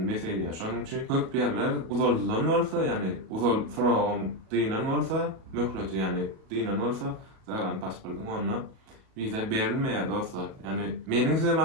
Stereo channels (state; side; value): late; left; 37 ms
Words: beselýär. Şonuň üçin köp ýerler uzaldylan bolsa ýani uzal soragym diýilen bolsa möhleti ýani diýilen bolsa zagran pasportuň onda viza berilmeýär dostlar. Ýani meniň size